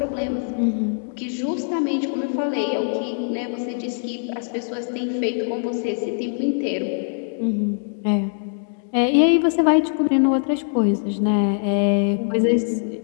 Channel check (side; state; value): right; silent; digital silence